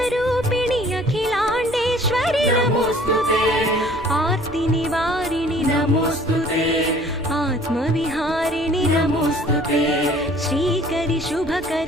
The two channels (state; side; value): noise; right; rumble, 22 dB below the sound